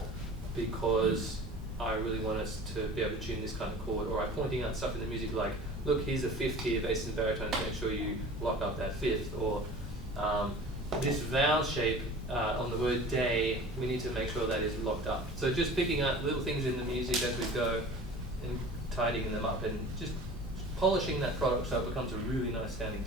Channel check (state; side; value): normal; both; correlation 0.41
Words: because I really want us to be able to tune this kind of chord, or I'm pointing out stuff in the music like, look, here's a fifth here, bass and baritone, to make sure you lock up that fifth, or this vowel shape on the word day, we need to make sure that is locked up. So just picking up little things in the music as we go and tidying them up and just polishing that product so it becomes a really nice sounding